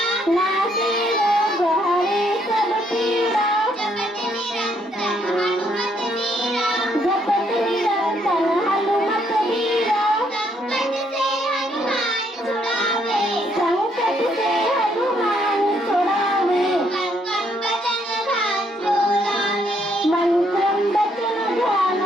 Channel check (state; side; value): normal; both; correlation 0.71